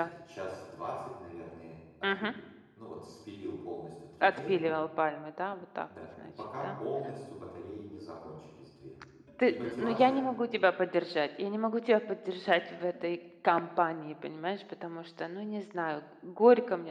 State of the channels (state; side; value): identical; both; correlation 1.00